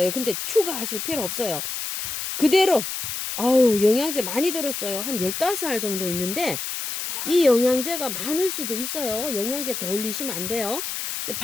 근데 추가하실 필요 없어요. 그대로 아유 영양제 많이 들었어요. 한 15알 정도 있는데 이 영양제가 많을 수도 있어요. 영양제 더 올리시면 안 돼요. 근데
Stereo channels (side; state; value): left; noise; hiss, 5 dB below the sound